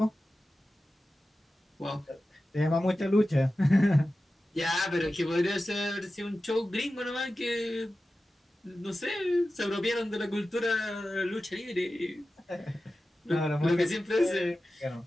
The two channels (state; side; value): normal; both; correlation 0.94